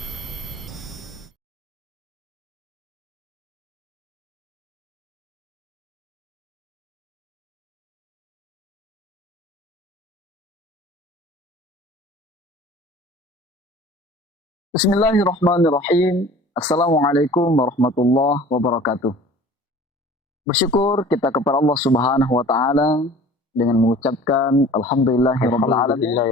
Bismillahirrahmanirrahim. Assalamualaikum warahmatullahi wabarakatuh. Bersyukur kita kepada Allah Subhanahu wa taala dengan mengucapkan alhamdulillahirabbil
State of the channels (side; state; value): both; normal; correlation 0.45